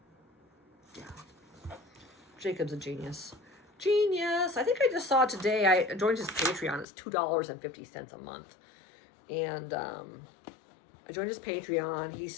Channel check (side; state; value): right; drops out; at 6.9 s